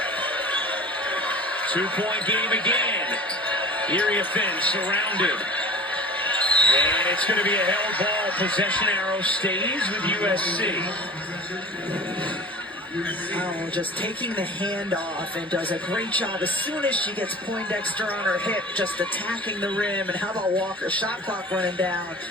2-point game again. Iriafen surrounded. And it's going to be a held ball. Possession arrow stays with USC. Oh, just taking the hand off and does a great job as soon as she gets Poindexter on her hip, just attacking the rim. And how about Walker? Shot clock running down.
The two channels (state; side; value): normal; both; correlation 0.40